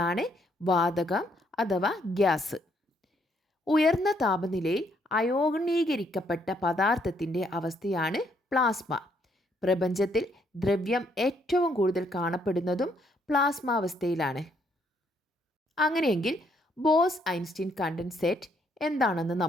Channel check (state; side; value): normal; both; correlation 0.71